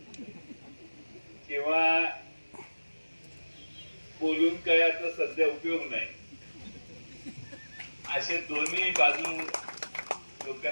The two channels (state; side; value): inverted; both; correlation -1.00